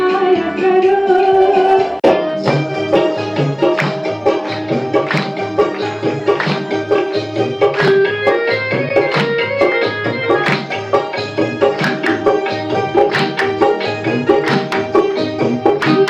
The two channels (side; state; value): both; identical; correlation 1.00